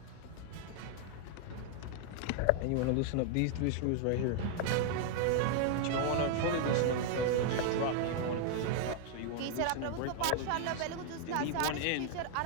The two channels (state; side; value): different; both; correlation 0.00